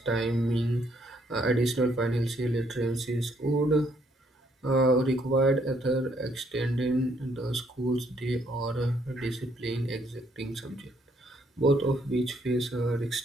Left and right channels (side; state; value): both; normal; correlation 0.69